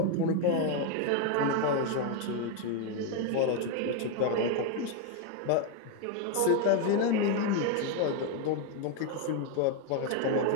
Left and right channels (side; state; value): both; different; correlation 0.02